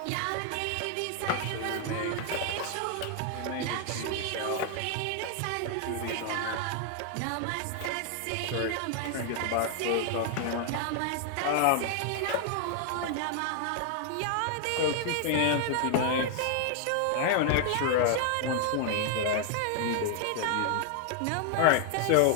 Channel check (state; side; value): different; both; correlation 0.00